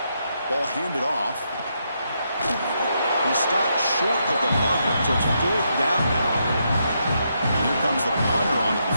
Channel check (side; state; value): both; inverted; correlation -0.80